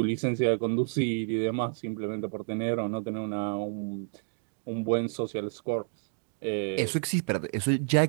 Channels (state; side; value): silent; left; digital silence